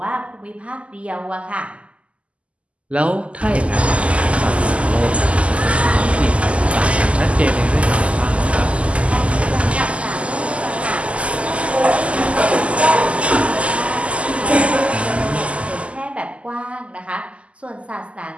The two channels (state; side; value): late; left; 0.060 ms